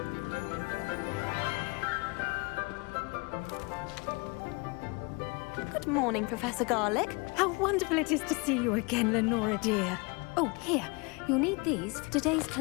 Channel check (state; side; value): quieter; right; 28.6 dB